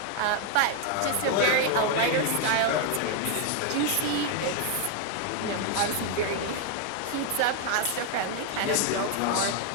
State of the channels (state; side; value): different; both; correlation 0.00